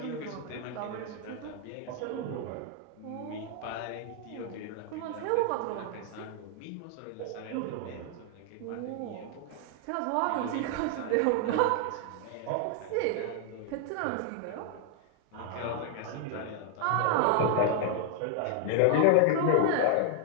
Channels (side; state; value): both; different; correlation 0.00